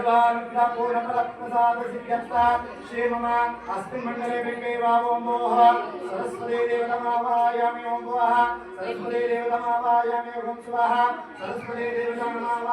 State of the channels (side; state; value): both; identical; correlation 1.00